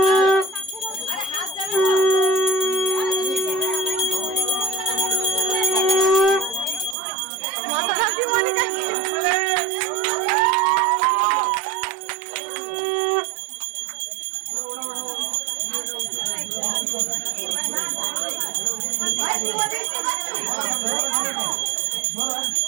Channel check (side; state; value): left; drops out; at 7.0 s